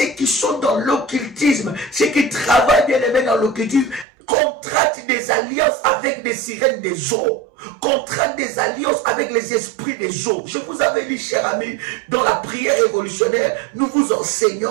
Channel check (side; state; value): left; drops out; at 4.0 s